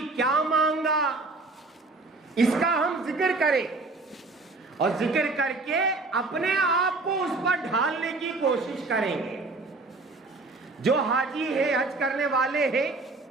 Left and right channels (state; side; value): quieter; left; 3.5 dB